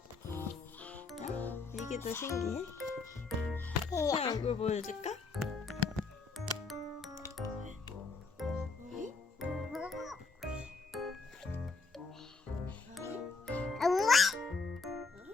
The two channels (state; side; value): quieter; right; 4.1 dB